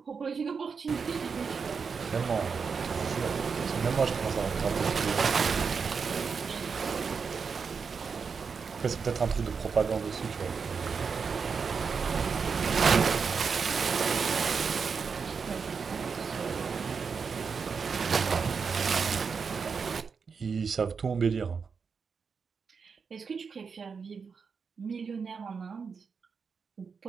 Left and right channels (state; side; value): quieter; left; 5.6 dB